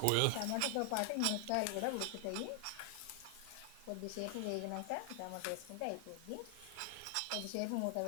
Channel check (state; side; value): different; both; correlation 0.00